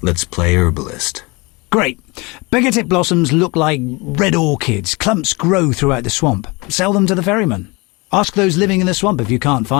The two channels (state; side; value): quieter; right; 26.1 dB